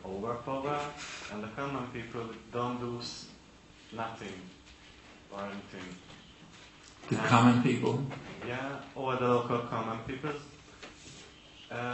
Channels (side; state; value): both; identical; correlation 1.00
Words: overpower and the common people don't do nothing or anything. The common people? Yeah, or the local common people